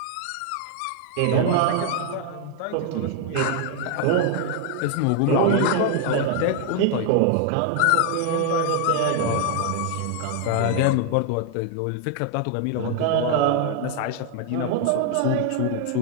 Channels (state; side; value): different; both; correlation 0.00